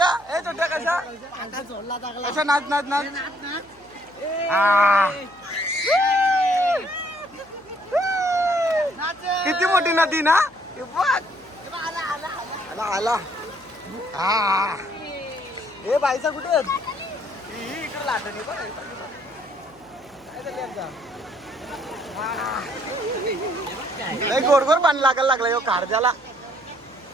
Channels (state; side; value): noise; left; hum, 29 dB below the sound